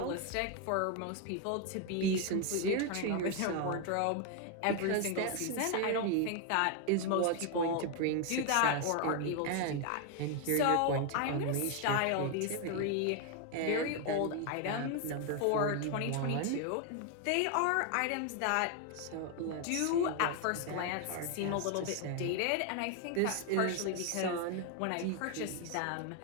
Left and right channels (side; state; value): both; different; correlation 0.01